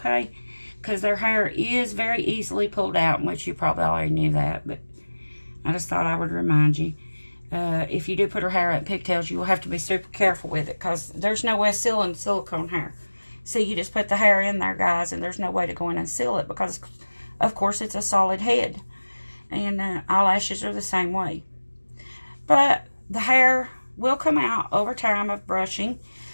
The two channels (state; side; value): inverted; both; correlation -1.00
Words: Because their hair is very easily pulled out, which you probably already knew that, but I just thought I would remind you. If you do put her hair up in pigtails, you will have to be super careful with it, because there's no way of sealing silicone hair. See, you just put the hair in there, guys, and there's no way to go in and seal it, because, of course, it's a solid head. And eyelashes are the same way. But the hair will come out over time of brushing,